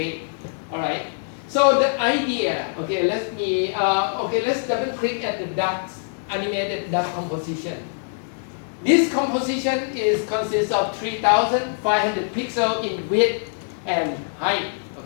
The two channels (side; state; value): right; silent; digital silence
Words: All right. So the idea, okay, let's double click at the ducks, animated duck composition. This composition consists of 3,500 pixels in width and height,